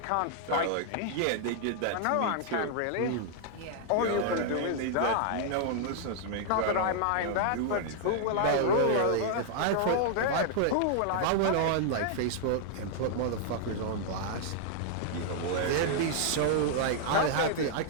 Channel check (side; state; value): both; different; correlation -0.01